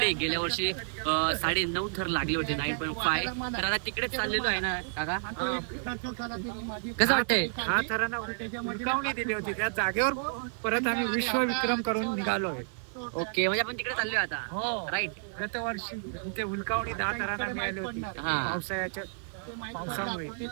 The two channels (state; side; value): silent; left; digital silence